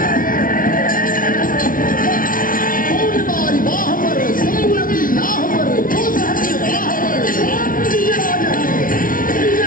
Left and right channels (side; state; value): right; late; 0.40 ms